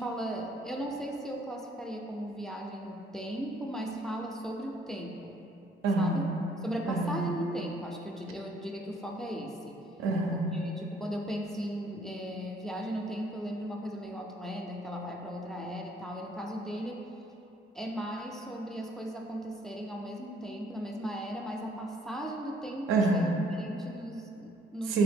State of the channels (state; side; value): normal; both; correlation 0.63